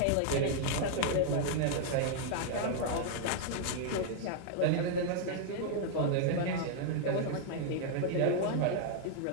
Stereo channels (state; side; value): different; both; correlation -0.01